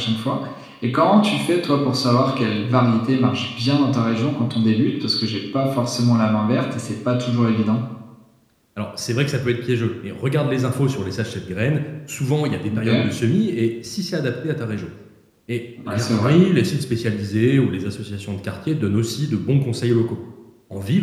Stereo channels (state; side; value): identical; both; correlation 1.00